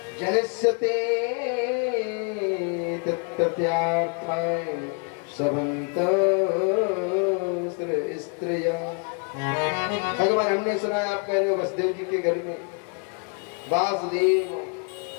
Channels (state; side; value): quieter; right; 37.1 dB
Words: जनस्यते तत्त्यार्थाय सबंत स्त्रिया। भगवान हमने सुना है आप कह रहे हो वसुदेव जी के घर में वासुदेव